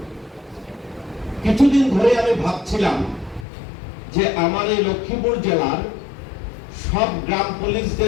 কিছুদিন ধরে আমি ভাবছিলাম যে আমার এই লক্ষ্মীপুর জেলার সব গ্রাম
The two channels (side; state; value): right; drops out; at 3.5 s